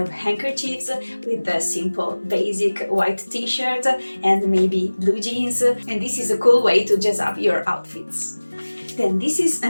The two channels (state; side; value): inverted; both; correlation -1.00